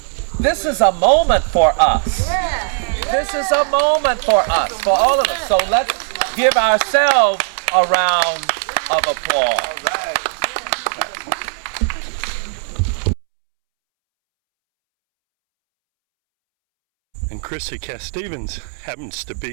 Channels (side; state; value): left; silent; 67 dB below the other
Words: This is a moment for us. This is a moment for us, for all of us. So let's give ourselves a round of applause. All right. And Chrissy Cass-Stevens happens to